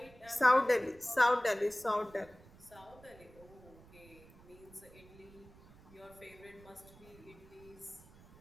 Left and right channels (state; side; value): noise; right; rumble, 23 dB below the sound